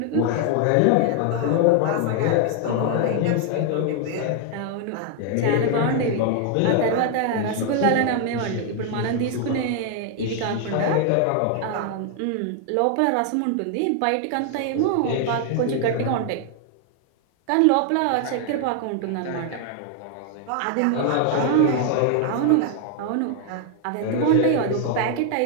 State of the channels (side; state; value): both; different; correlation 0.00